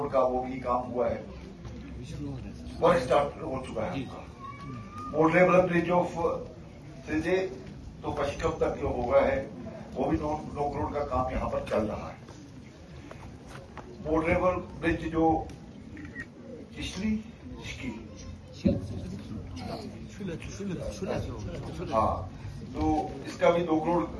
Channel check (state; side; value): identical; both; correlation 1.00